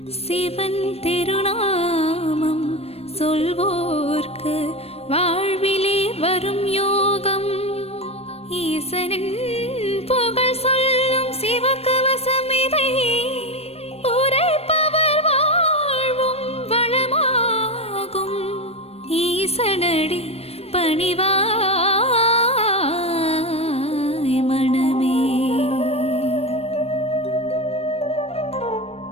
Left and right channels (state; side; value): late; right; 0.29 ms